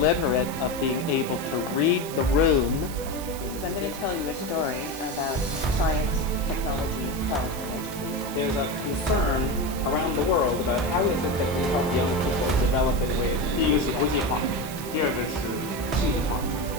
of being able to read the room. So I'm going to tell you a story about science, technology, health, and education. There's a concern around the world about how is it that we help young people develop in ways. 第一个是国际化，第二个是数字化，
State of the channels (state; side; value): noise; right; hiss, 12 dB below the sound